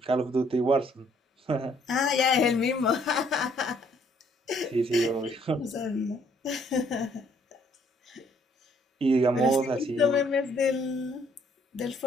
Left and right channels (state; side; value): normal; both; correlation 0.65